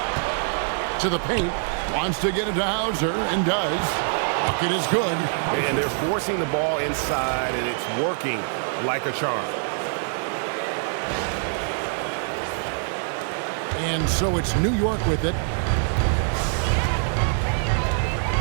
To the paint. Wants to get it to Hauser and does. Bucket is good. And they're forcing the ball inside, and it's working like a charm. And so it's New York with it.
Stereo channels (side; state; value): left; silent; digital silence